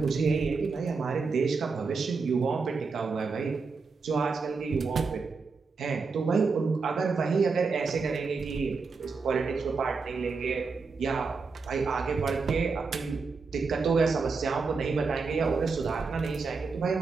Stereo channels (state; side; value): quieter; left; 4.6 dB